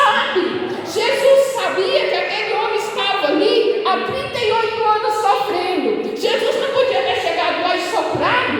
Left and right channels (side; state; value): both; identical; correlation 1.00